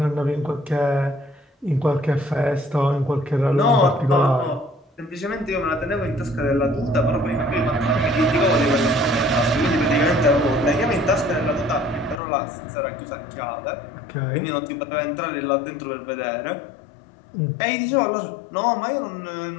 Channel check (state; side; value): drops out; right; at 12.2 s